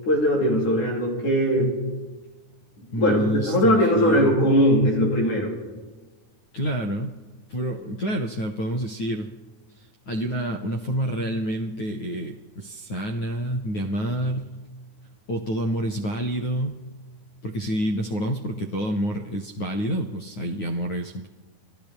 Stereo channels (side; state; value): right; late; 9.5 ms